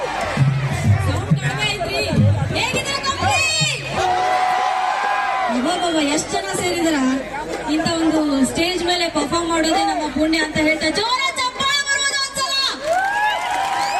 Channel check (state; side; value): identical; both; correlation 1.00